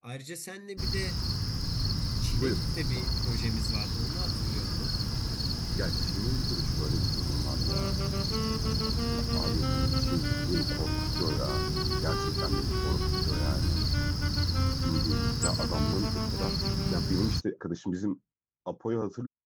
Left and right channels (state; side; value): identical; both; correlation 1.00